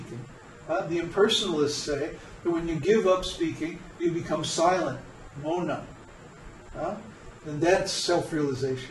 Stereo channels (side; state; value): both; identical; correlation 1.00